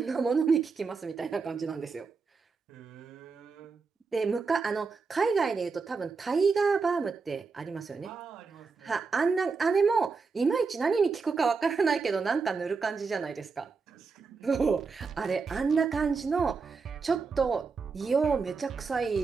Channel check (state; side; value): quieter; left; 4.8 dB